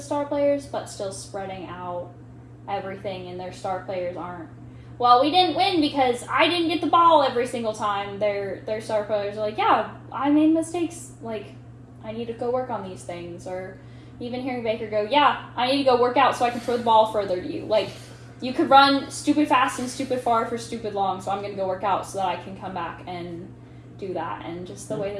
star players, but still spreading out everything, and their star players aren't, well, we didn't win because I didn't get the ball every single time. Their star players are yeah, I made mistakes, I need to go work on these things. Or even hearing Baker go, yeah, I need to go work out so I can throw the ball further to you. You could run stupid fast and stupid far for stupid long, so I'm going to go work out so that I can come back and do that. And just the way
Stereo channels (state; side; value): identical; both; correlation 1.00